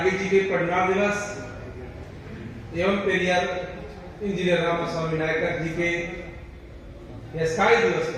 जी के परिनिर्वाण दिवस एवं पेरियार इंजीनियर रामास्वामी नायकर जी के स्काई दिवस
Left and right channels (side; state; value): both; identical; correlation 1.00